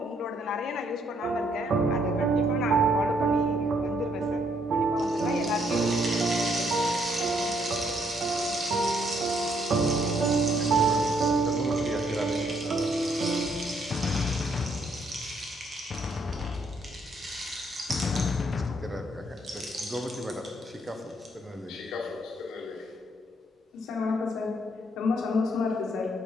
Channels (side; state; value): both; normal; correlation 0.70